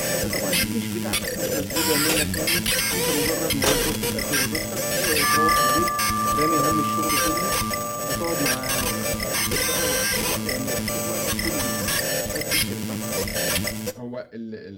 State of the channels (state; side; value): identical; both; correlation 1.00